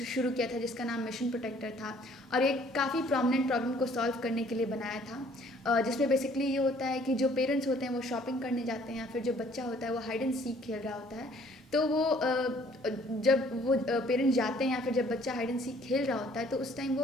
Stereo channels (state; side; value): normal; both; correlation 0.59